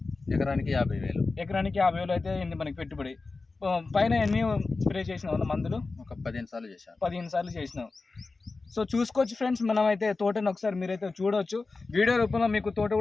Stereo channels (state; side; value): quieter; right; 3.8 dB